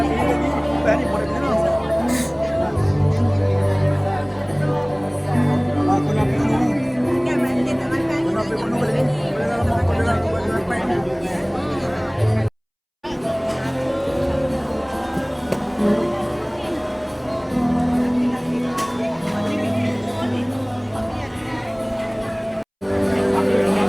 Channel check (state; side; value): identical; both; correlation 1.00